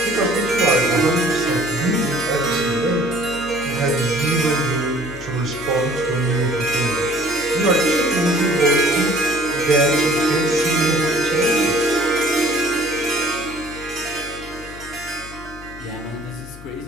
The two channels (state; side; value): noise; left; hum, 18 dB below the sound